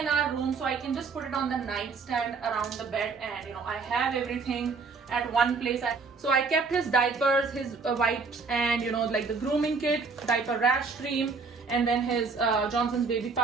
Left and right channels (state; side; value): quieter; left; 4.7 dB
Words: our room, so I can just put it on the nightstand around the bed and I have everything at one place. So I kept his diapers, his wipes, and the grooming kit, diaper rash cream, and then his Johnson's baby